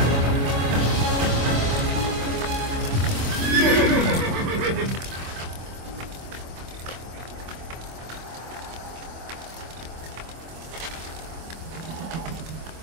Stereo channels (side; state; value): left; late; 25 ms